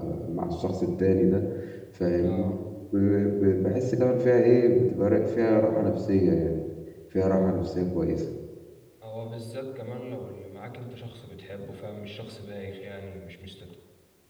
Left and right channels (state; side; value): identical; both; correlation 1.00